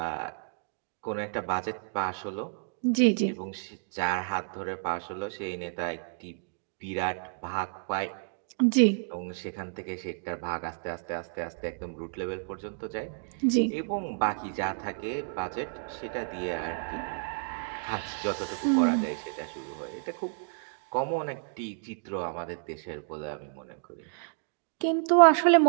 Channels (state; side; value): silent; left; digital silence